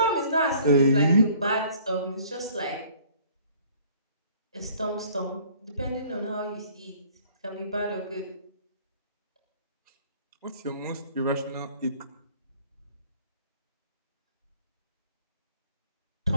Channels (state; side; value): inverted; both; correlation -0.54